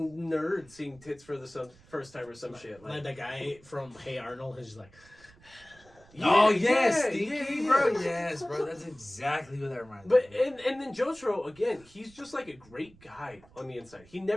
seeing tits for the first time or some shit. Like the guy from Hey Arnold is like. Oh yes, Stinky, bro. Yes, bro. That's exactly what that reminds me. But and then Jotaro again, he's just like a great guy on the inside. He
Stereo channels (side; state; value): right; noise; rumble, 26 dB below the sound